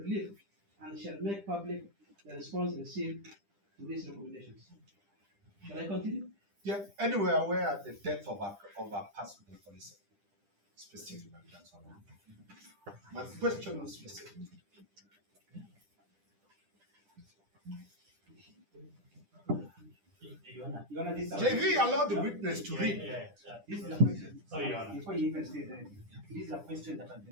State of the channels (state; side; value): late; left; 10 ms